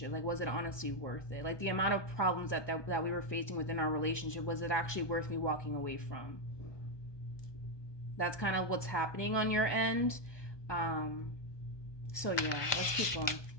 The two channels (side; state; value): right; late; 1.2 ms